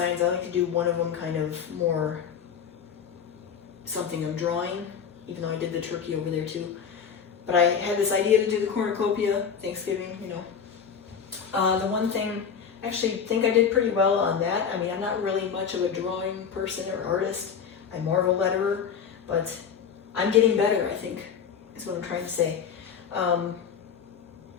I like to do one of them kind of more something I'm drawing, even though I did the turkey over there too. But I had this idea to do the cornucopia, Thanksgiving, you know. The one thing, I actually think I did pretty well on that. I mean, I'm not really much of a drawing person or artist. I'm more of a letterer, but I'm getting better, I think, is what I'm trying to say. The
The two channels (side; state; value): right; quieter; 7.1 dB